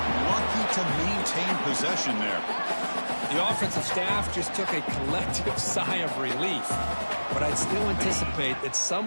Lucky to maintain possession there. The offensive staff just took a collective sigh of relief. But I'd still anticipate that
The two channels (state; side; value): inverted; both; correlation -1.00